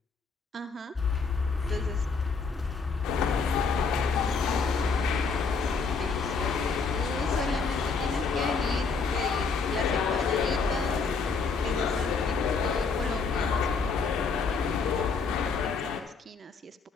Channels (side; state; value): right; quieter; 4.9 dB